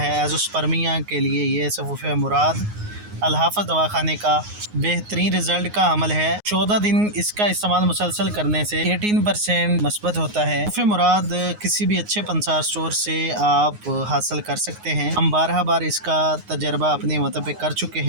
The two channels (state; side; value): late; left; 9.5 ms